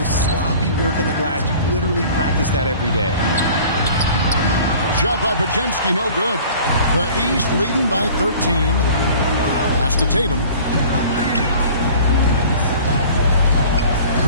sloppy work on the glass. You literally practice that every day. Shot by Pajemski, no good. The East leading by 13. Pass to Tatum.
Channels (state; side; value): inverted; both; correlation -0.46